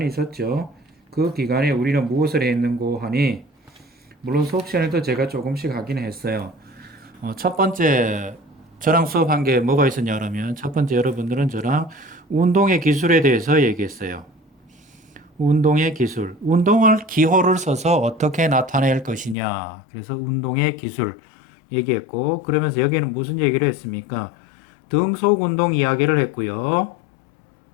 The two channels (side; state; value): right; drops out; at 19.4 s